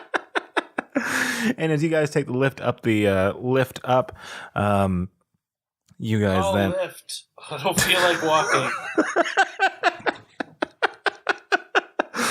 And as you guys take the lift up, you guys then Lift. I don't feel like walking.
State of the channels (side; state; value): both; identical; correlation 1.00